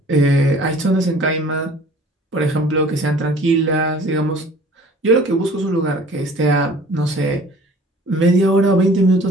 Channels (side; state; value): both; normal; correlation 0.49